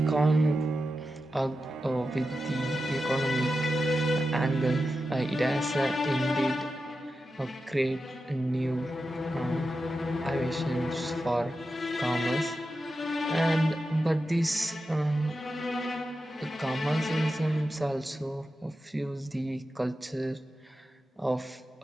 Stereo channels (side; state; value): both; normal; correlation 0.91